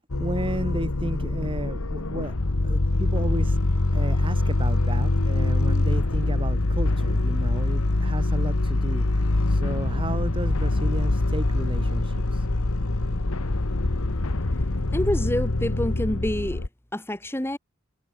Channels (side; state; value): both; normal; correlation 0.88